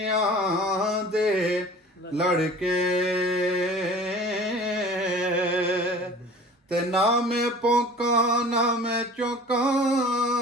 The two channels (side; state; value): both; normal; correlation 0.43